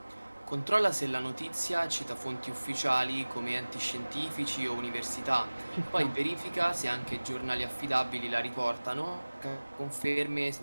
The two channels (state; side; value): inverted; both; correlation -1.00